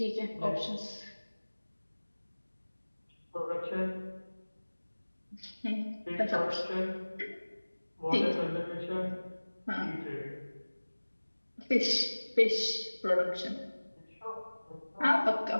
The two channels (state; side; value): inverted; both; correlation -1.00